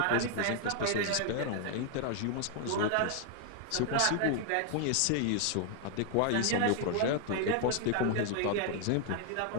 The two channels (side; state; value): both; different; correlation 0.00